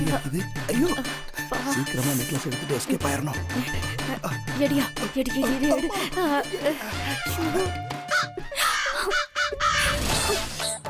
ஐயோ, சீக்கிரமா நெக்லஸ் எடுத்துட்டு எஸ்கேப் ஆயிரணும். எடியா, எடி.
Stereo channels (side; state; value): both; identical; correlation 1.00